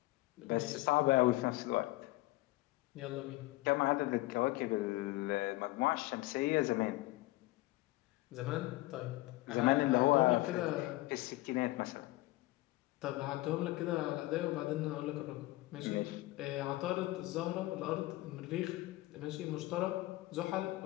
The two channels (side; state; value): right; quieter; 19.2 dB